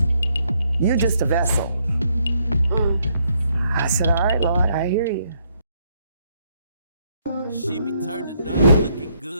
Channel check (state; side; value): inverted; both; correlation -0.73